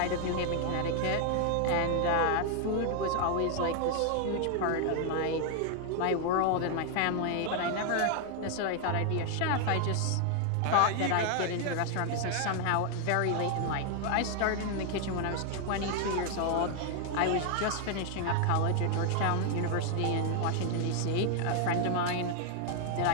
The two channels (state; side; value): different; both; correlation 0.00